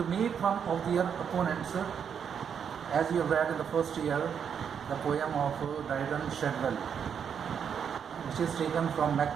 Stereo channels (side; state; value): left; quieter; 7.5 dB